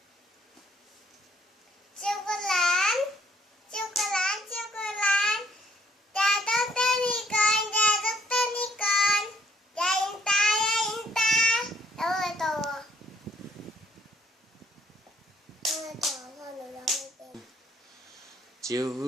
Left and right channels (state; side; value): normal; both; correlation 0.65